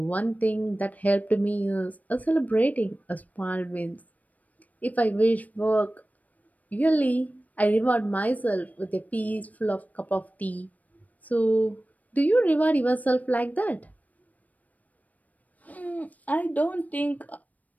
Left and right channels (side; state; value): right; late; 0.074 ms